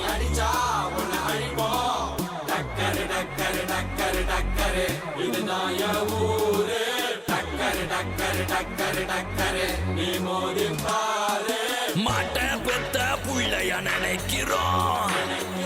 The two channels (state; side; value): identical; both; correlation 1.00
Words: அடிச்சா பொண்ண அழிப்போம் டக்கரு டக்கரு டக்கரு டக்கரு இதுதான் என் ஊரு டக்கரு டக்கரு டக்கரு டக்கரு நீ மோதி பாரு மாட்ட பெத்த புள்ளைய நினைக்கிறோம்